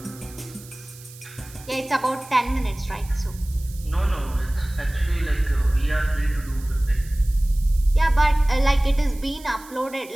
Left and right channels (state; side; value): noise; right; hiss, 20 dB below the sound